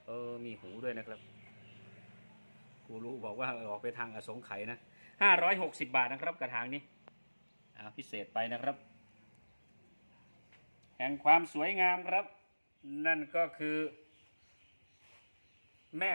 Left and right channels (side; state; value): both; inverted; correlation -1.00